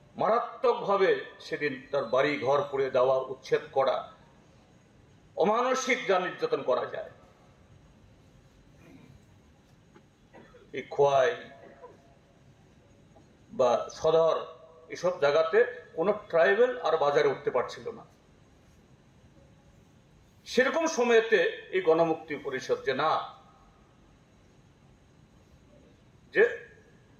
মারাত্মকভাবে সেদিন তার বাড়ি ঘর পুড়ে দেওয়া, উচ্ছেদ করা, অমানসিক যা নির্যাতন করা যায়। এই খোয়াই বা সদর এসব জায়গাতে কোনো ট্রাইবেল আর বাজারে উঠতে পারছিল না। সেরকম সময়েতে এই গণমুক্তি পরিষদ যে না, যে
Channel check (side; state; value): both; identical; correlation 1.00